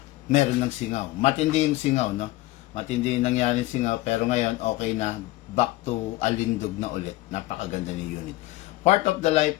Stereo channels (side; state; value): right; quieter; 18.3 dB